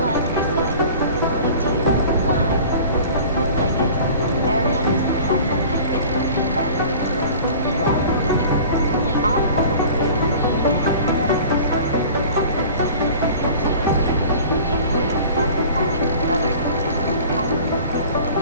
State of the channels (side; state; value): both; inverted; correlation -0.43